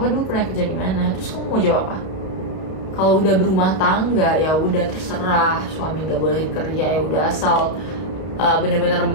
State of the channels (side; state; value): right; late; 32 ms